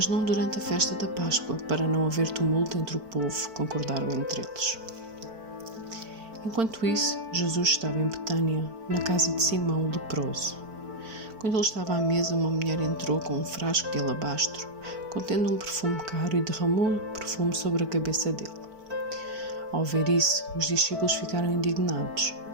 não durante a festa da Páscoa, para não haver tumulto entre o povo, concordaram entre eles. Enquanto isso, Jesus estava em Betânia, na casa de Simão o leproso. Quando ele estava à mesa, uma mulher entrou com um frasco de alabastro, contendo um perfume caro, e derramou o perfume sobre a cabeça dele. Ao ver isso, os discípulos ficaram indignados.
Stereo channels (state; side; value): late; left; 4.5 ms